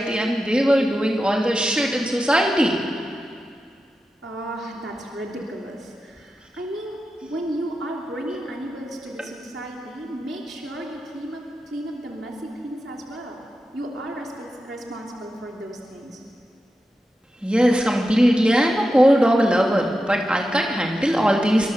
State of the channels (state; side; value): normal; both; correlation 0.91